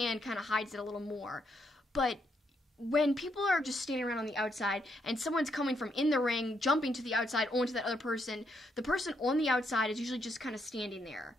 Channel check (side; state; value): both; normal; correlation 0.76